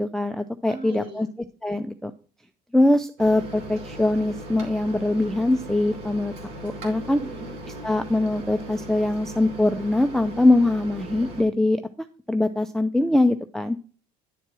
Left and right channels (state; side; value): normal; both; correlation 0.95